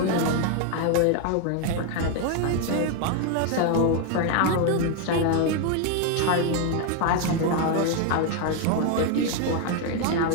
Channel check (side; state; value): both; different; correlation 0.01